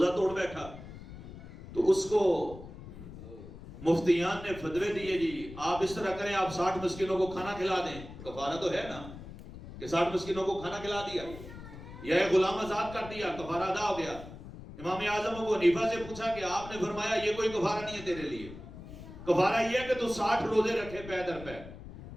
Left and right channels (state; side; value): noise; left; rumble, 14 dB below the sound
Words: توڑ بیٹھا تو اس کو مفتیان نے فتوے دیے جی آپ اس طرح کریں، آپ 60 مسکینوں کو کھانا کھلا دیں. کفارہ تو ہے نا کہ 60 مسکینوں کو کھانا کھلا دیا یا ایک غلام آزاد کر دیا، کفارہ ادا ہو گیا. امام اعظم ابو حنیفہ سے پوچھا کہ آپ نے فرمایا یہ کوئی کفارہ نہیں ہے تیرے لیے، کفارہ یہ ہے کہ تو 60 روزے رکھے پے در پے،